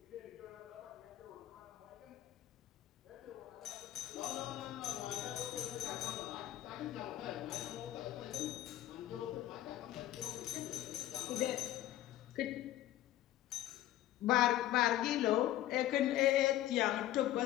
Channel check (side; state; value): right; quieter; 14.0 dB